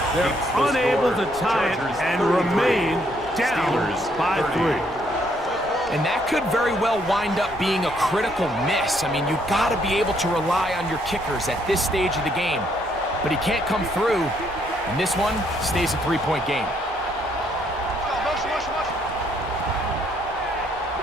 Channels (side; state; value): both; normal; correlation 0.70